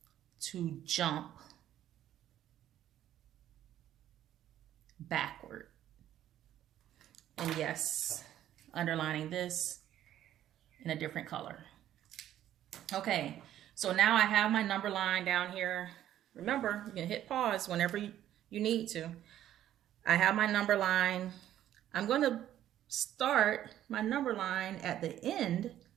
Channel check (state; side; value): quieter; left; 11.9 dB